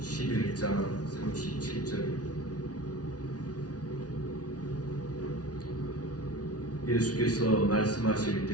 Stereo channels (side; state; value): right; late; 0.68 ms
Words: 37절. 예수께서 말씀하실